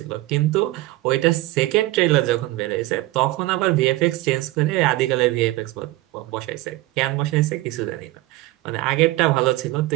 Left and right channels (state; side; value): quieter; left; 18.3 dB